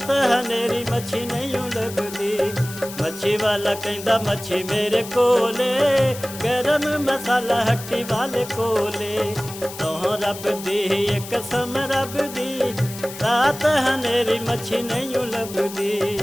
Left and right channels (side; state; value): left; noise; hiss, 13 dB below the sound